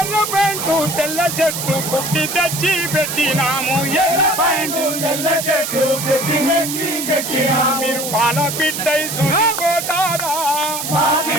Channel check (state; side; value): noise; right; hiss, 5 dB below the sound